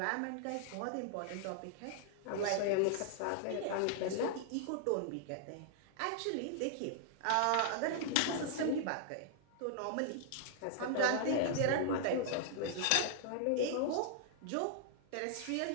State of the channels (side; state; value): both; different; correlation -0.01